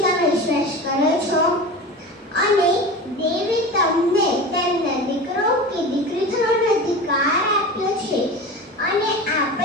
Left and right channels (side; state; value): both; normal; correlation 0.31